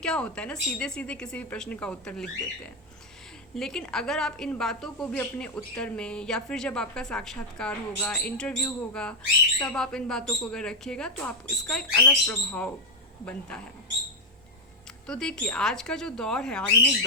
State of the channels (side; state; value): both; normal; correlation 0.04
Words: होता है ना, सीधे सीधे किसी भी प्रश्न का उत्तर लिख देते हैं। लेकिन अगर आप इन बातों को भी अपने उत्तर में, या फिर जब आपका साक्षात्कार होगा, इंटरव्यू होगा, तब आप इन बातों को अगर रखिएगा तो आप इसका एक अलग प्रभाव बनता है। तो देखिए आज का जो दौर है, आधुनिक